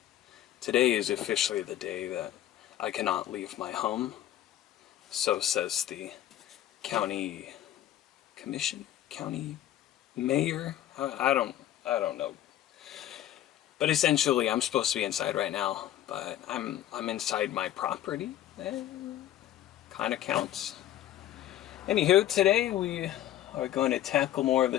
Today is officially the day that I cannot leave my home. So says the county commission, county mayor. I don't know. But essentially, I'm supposed to be inside right now, but I'm inside my property. Kind of counts. Anywho, today we are going to tackle more of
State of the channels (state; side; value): quieter; right; 12.6 dB